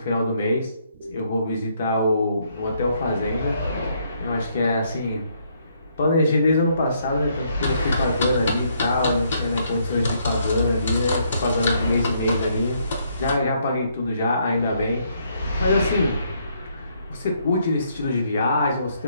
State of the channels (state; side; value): inverted; both; correlation -0.71